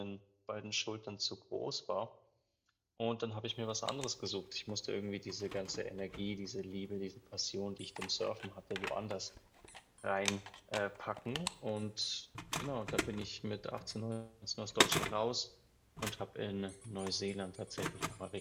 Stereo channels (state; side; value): identical; both; correlation 1.00